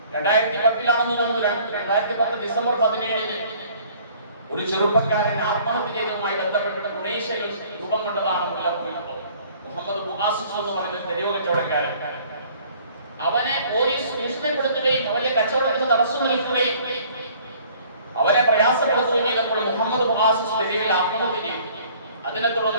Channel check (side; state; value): both; inverted; correlation -0.54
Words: 2010 തോന്നുന്നു, 2010 ഡിസംബർ 17 ഒരു ചെറുപ്പക്കാരൻ ആത്മഹത്യ ചെയ്തതുമായി ബന്ധപ്പെട്ട് തുണീഷ്യയിൽ രൂപം കൊണ്ടതാണ് മുല്ലപ്പൂ വിപ്ലവം. മുഹമ്മദ് ബുആസിസ് എന്ന് പറയുന്ന തെരുവ് കച്ചവടക്കാരൻ, അവനെ പോലീസ് ഭീഷണിപ്പെടുത്തുകയും അവന്റെ കച്ചവടത്തിന് തടസ്സം നിൽക്കുകയും അവരെ പ്രയാസപ്പെടുത്തുകയും ചെയ്തപ്പോൾ മുഹമ്മദ് ബുആസിസ് തെരുവിൽ ആത്മഹത്യ ചെയ്തു. അതിനെ